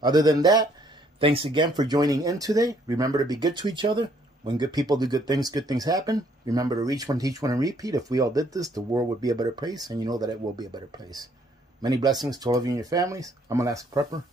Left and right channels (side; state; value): both; normal; correlation 0.66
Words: Other than that, thanks again for joining in today. Remember to be good to each other. When good people do good things happen. Remember to reach one, teach one, and repeat. If we all did this, the world would be a better place, and you know that it will be a better place. Many blessings to all of you and your families. I'm Alaska Prepper.